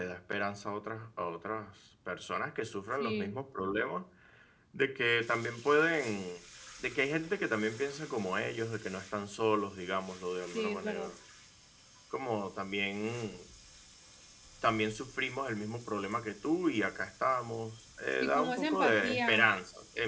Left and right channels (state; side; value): identical; both; correlation 1.00